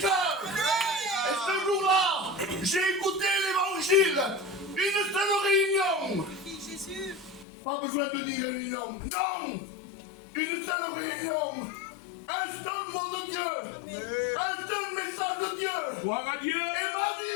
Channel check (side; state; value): right; drops out; at 7.5 s